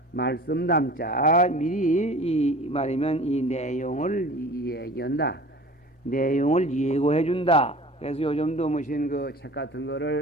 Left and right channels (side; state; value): both; normal; correlation 0.42